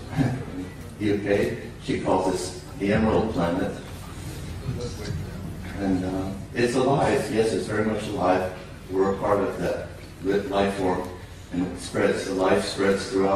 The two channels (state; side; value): identical; both; correlation 1.00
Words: UK, she calls this the Emerald Planet. And it's alive, yes, it's very much alive. We're a part of that life form. And it spreads, the life spreads